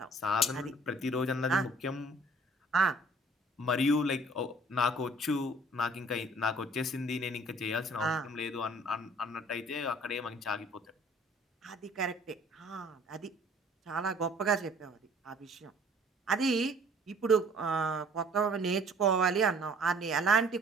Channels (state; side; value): normal; both; correlation 0.54